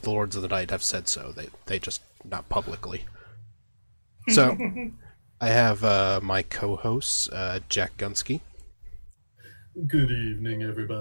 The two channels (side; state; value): both; inverted; correlation -1.00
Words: the Lords of the Night have said so. They just not publicly. So, I have my co-hosts, Jack Gunsky. Good evening,